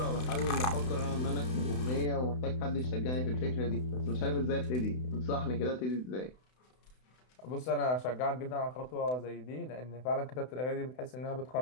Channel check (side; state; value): right; late; 32 ms